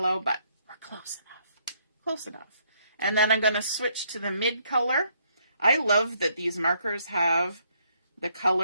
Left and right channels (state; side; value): inverted; both; correlation -0.70